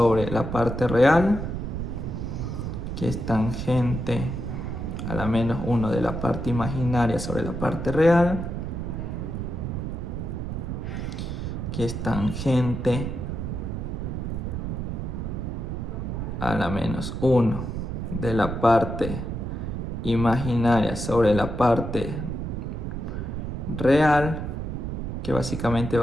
la parte real, que es tangente a la menos 1 de la parte imaginaria sobre la parte real, que es tangente a la menos 1 de la parte imaginaria sobre la parte real, que básicamente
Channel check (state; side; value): noise; right; rumble, 4 dB below the sound